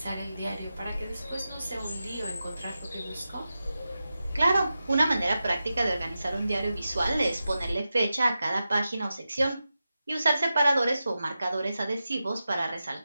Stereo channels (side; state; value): both; inverted; correlation -0.92